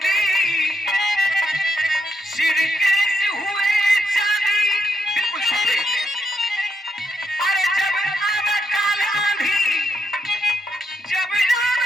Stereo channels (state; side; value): normal; both; correlation 0.80